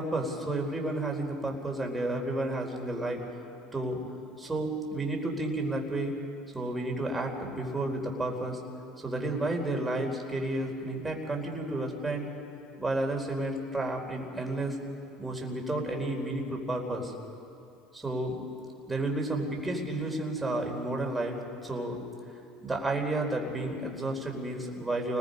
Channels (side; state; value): both; normal; correlation 0.65